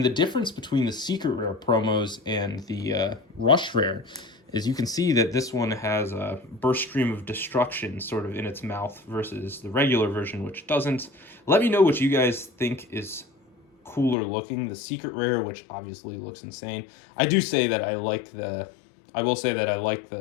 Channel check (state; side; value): drops out; right; at 14.2 s